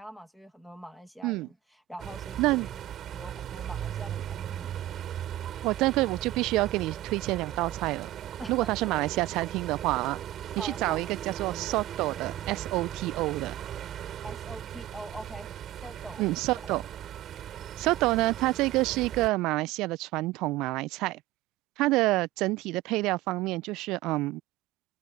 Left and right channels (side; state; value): left; quieter; 16.3 dB